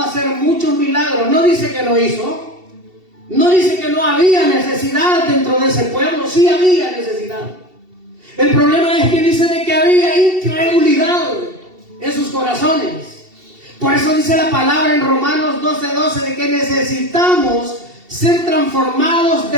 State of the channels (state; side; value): late; left; 2.7 ms